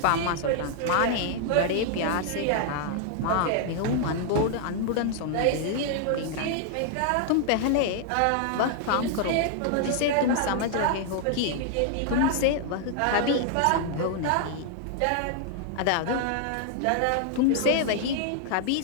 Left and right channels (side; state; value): both; different; correlation 0.00